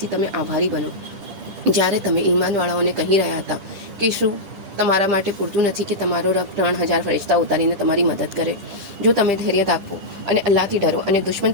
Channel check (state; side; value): late; left; 10 ms